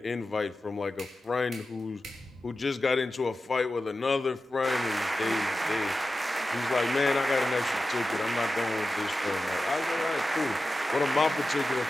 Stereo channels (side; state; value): both; normal; correlation 0.93